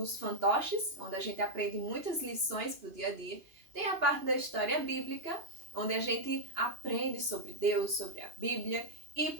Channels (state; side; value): late; left; 2.9 ms